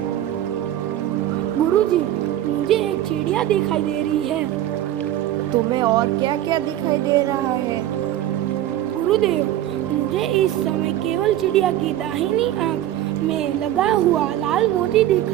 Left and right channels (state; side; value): quieter; left; 12.9 dB